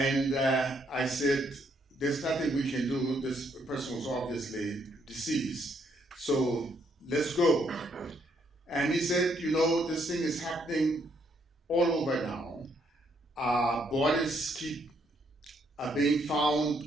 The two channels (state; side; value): normal; both; correlation 0.72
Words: I said, "There's nothing we can do. This person was obviously deceased. So let's go." And he said, "You know, this thing is happening all over now. Bodies keep being